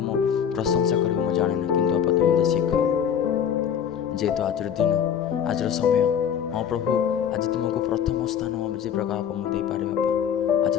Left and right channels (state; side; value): quieter; right; 8.4 dB